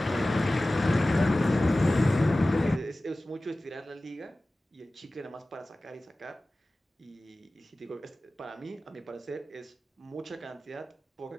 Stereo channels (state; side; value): normal; both; correlation 0.97